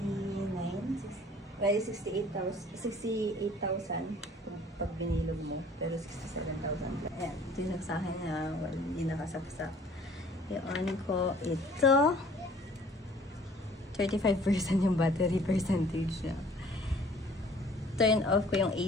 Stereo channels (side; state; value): both; normal; correlation 0.54